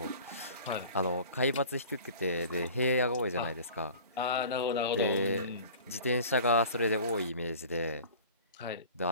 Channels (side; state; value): both; inverted; correlation -0.43